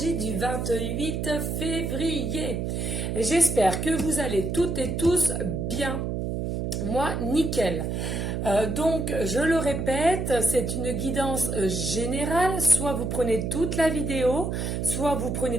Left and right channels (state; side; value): noise; right; hum, 2 dB below the sound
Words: du 28 février. J'espère que vous allez toutes et tous bien. Moi, nickel. Donc, je le répète, c'est une guidance générale. Soit vous prenez toute la vidéo, soit vous prenez